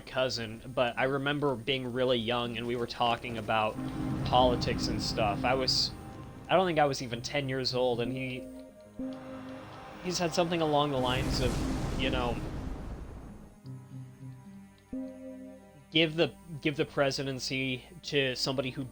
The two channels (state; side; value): identical; both; correlation 1.00